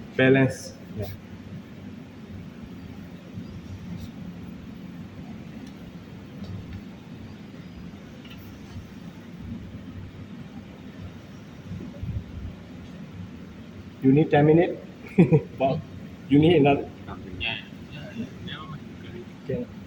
Balance. Yeah. You need 10 minutes. Well, you need another. Okay.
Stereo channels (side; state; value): both; identical; correlation 1.00